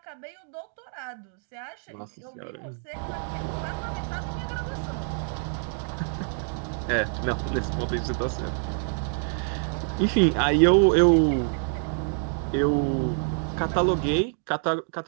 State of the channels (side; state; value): left; silent; 60 dB below the other